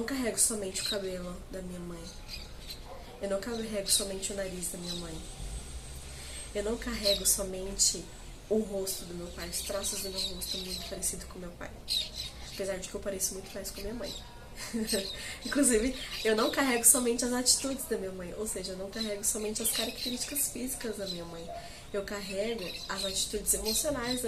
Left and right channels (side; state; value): both; identical; correlation 1.00